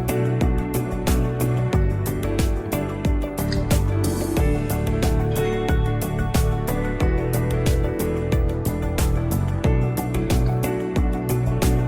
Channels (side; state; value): both; identical; correlation 1.00